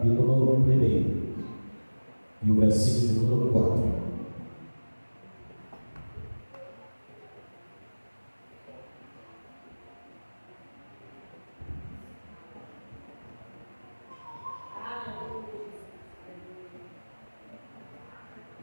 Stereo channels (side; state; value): both; inverted; correlation -1.00